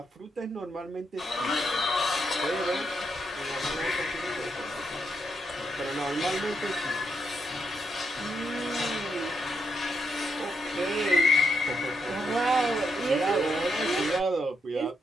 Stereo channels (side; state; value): both; normal; correlation 0.80